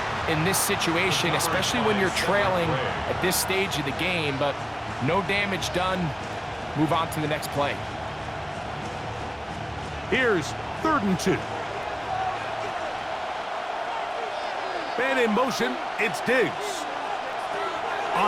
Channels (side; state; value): both; identical; correlation 1.00